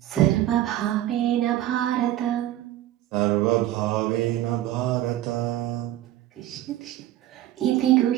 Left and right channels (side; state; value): left; quieter; 13.7 dB